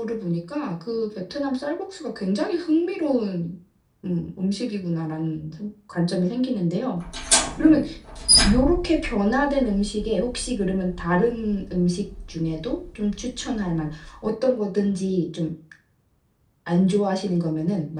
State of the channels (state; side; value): identical; both; correlation 1.00